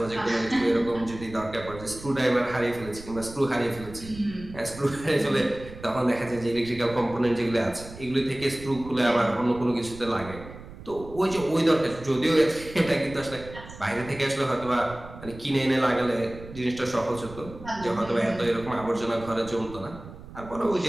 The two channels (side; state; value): right; noise; rumble, 15 dB below the sound